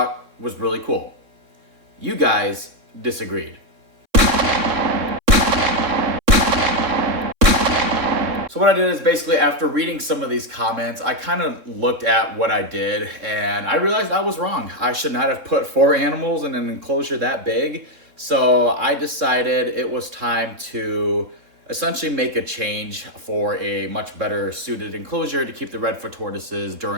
was really cool. You guys disagreed. So what I did is basically after reading some of these comments, I kind of looked at what I did and I realized I was wrong. I should not have put 4 animals in an enclosure that big. So I decided it was time to essentially make a change for a much better suited enclosure to keep the Redfoot tortoises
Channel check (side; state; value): left; late; 3.7 ms